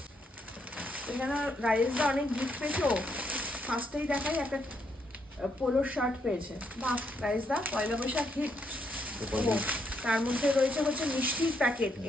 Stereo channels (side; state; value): both; normal; correlation 0.76